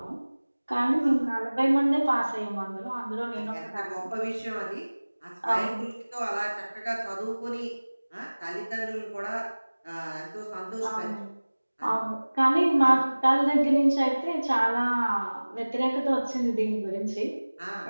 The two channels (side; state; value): both; inverted; correlation -1.00